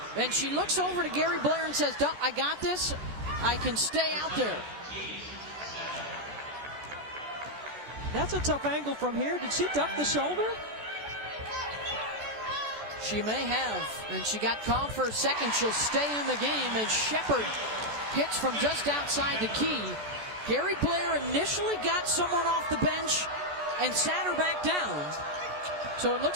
And she looks over to Gary Blair and says, I got this. I can stay out there. That's a tough angle from here. Did she duck the shoulder? She may have. And she got called for a second. She'll stay in the game as Shepard hits from just outside the key. Gary Blair initially got someone off the bench and sat her back down. So it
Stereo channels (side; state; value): left; late; 14 ms